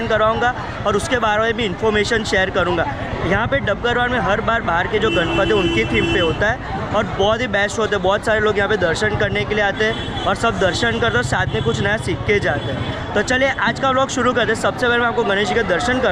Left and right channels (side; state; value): both; identical; correlation 1.00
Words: करवाऊँगा और उसके बारे में भी इन्फॉर्मेशन शेयर करूँगा। यहाँ पे डबगर वार्ड में हर बार बाहर के जो गणपति उनकी थीम पे होता है और बहुत ही बेस्ट होते हैं। बहुत सारे लोग यहाँ पे दर्शन करने के लिए आते हैं और सब दर्शन करते हैं, साथ में कुछ नया सीख के जाते हैं। तो चलिए आज का व्लॉग शुरू करते हैं। सबसे पहले मैं आपको गणेश जी के दर्शन